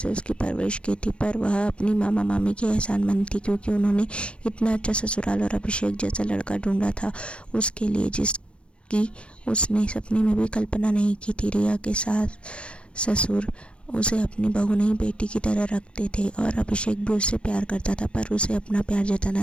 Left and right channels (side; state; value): right; late; 0.059 ms